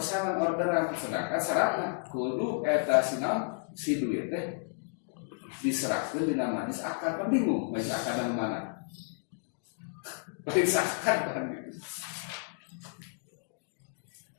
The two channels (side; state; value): right; silent; digital silence